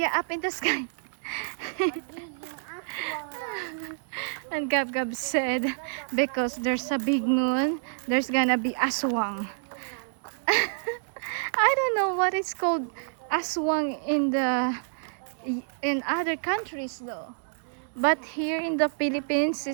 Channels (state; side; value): silent; left; digital silence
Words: up in the sky. Magiging aswang lang. And Gab Gab said, because there's a big moon, there's gonna be aswang. I don't know what it's called aswang in other countries though. But here in the Philippines,